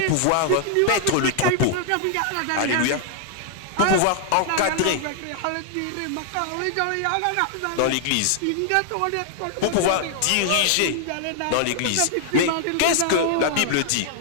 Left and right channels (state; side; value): different; both; correlation 0.00